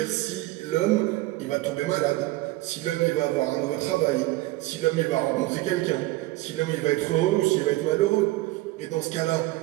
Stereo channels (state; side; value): quieter; left; 18.7 dB